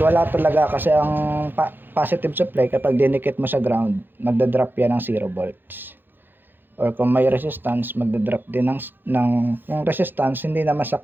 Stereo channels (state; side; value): late; left; 0.096 ms